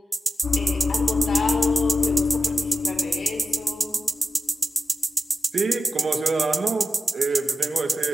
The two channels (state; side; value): normal; both; correlation 0.91